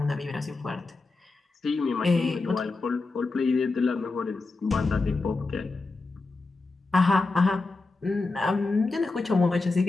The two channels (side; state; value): right; quieter; 3.6 dB